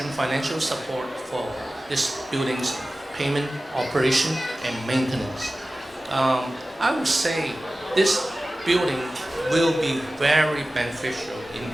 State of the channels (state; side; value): normal; both; correlation 0.96